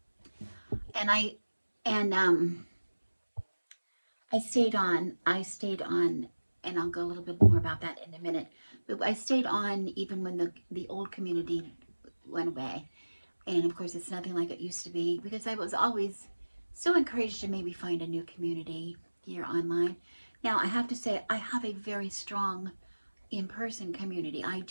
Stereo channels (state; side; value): inverted; both; correlation -1.00